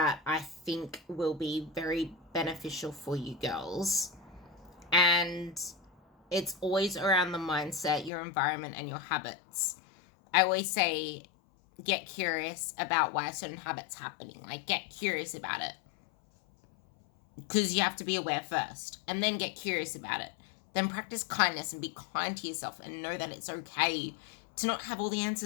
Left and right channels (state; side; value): drops out; right; at 8.1 s